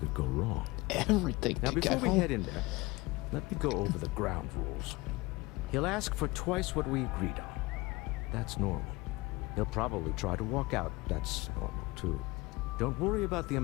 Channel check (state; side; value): quieter; right; 22.2 dB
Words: go wrong. Everything Now, could before go we wrong. head in there, let me go over the ground rules. He'll ask for twice what we agreed on. That's normal. He'll probably try to walk out. That's normal, too. Don't worry about the